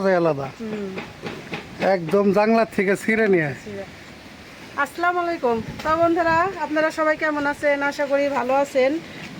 আলাদা। একদম জাংলার থেকে ছিঁড়ে নিয়ে। আসসালামু আলাইকুম। তো বন্ধুরা, আপনারা সবাই কেমন আছেন? আশা করি ভালো আছেন।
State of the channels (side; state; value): both; identical; correlation 1.00